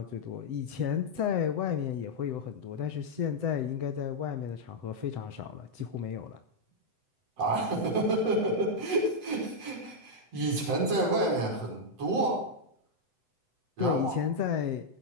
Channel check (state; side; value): late; left; 7.9 ms